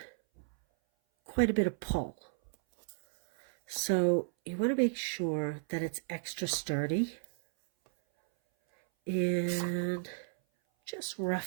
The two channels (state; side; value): silent; left; 56 dB below the other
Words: quite a bit of pull. So you want to make sure that it's extra sturdy. And just